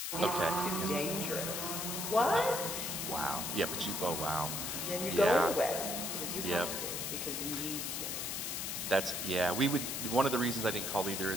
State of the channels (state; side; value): noise; left; hiss, 3 dB below the sound